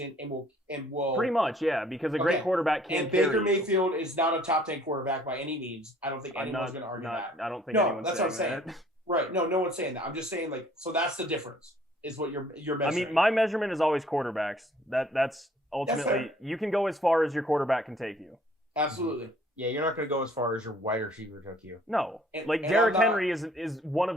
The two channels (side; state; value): both; normal; correlation 0.58